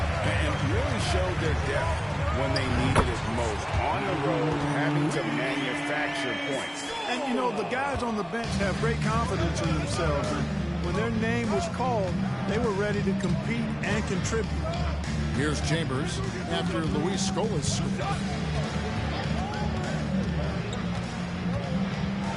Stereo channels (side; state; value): both; identical; correlation 1.00